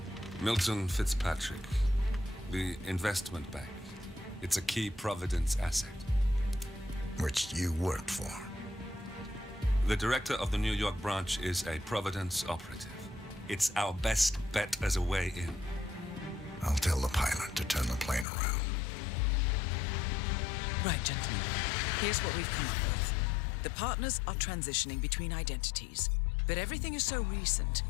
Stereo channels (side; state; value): right; drops out; at 18.2 s